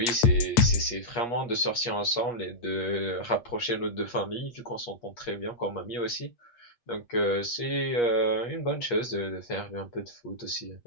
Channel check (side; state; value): right; late; 8.4 ms